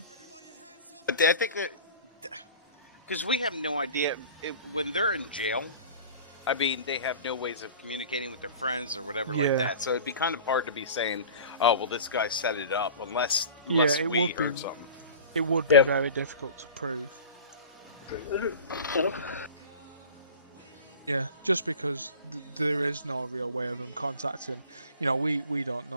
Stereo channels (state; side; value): inverted; both; correlation -0.39